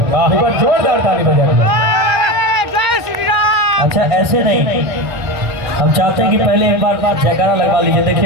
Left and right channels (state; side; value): late; left; 1.6 ms